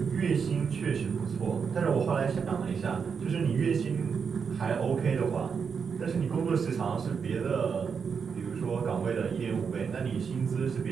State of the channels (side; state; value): left; quieter; 6.2 dB